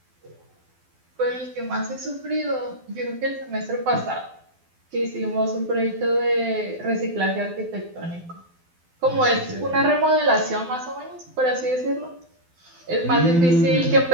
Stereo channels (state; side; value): late; left; 12 ms